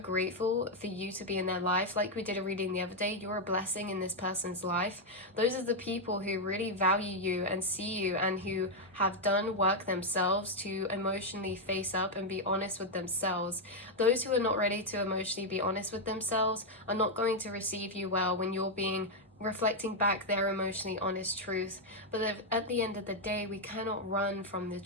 for you to be in their life. Like we did a reading the other day, you're a blessing in this person's life. Those are the people who really value you and see you, and who have done work themselves to emotionally face up and be honest with themselves. Those who are not ready to emotionally be honest with themselves are not going to receive you well when you're being reflecting back their emotionally honest truth. But at the end of the day, we cannot run from the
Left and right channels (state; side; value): normal; both; correlation 0.00